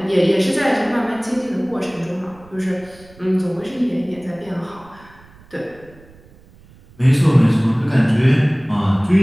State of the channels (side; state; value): right; noise; rumble, 25 dB below the sound